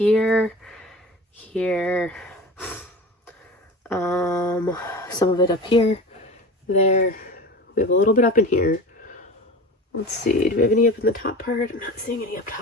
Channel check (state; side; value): normal; both; correlation 0.34